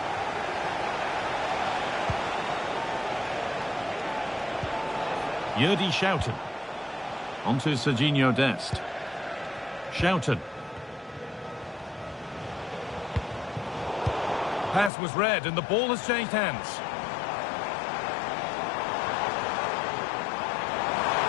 Yerdy Schouten. Onto Serginho Dest. Schouten. Pass was read and the ball has changed hands.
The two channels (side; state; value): right; drops out; at 14.9 s